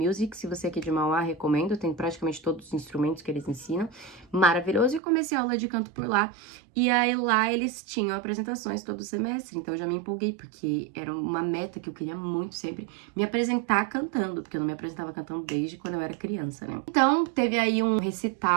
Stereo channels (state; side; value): drops out; left; at 5.0 s